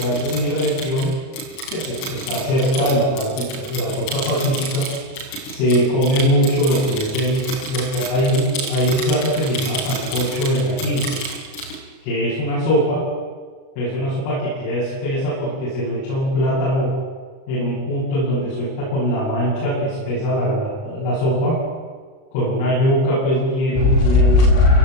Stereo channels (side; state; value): right; late; 37 ms